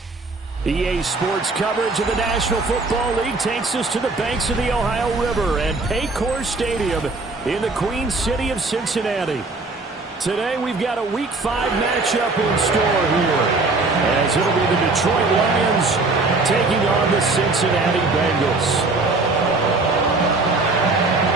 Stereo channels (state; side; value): quieter; left; 3.5 dB